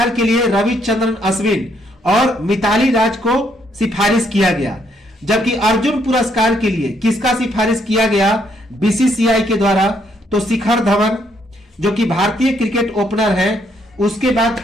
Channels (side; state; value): both; normal; correlation 0.72